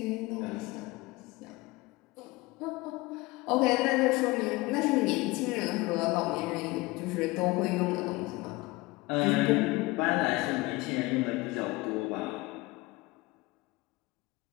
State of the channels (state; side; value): quieter; right; 22.0 dB